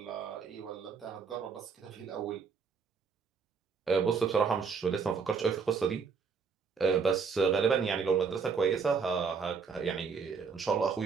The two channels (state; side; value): quieter; left; 5.6 dB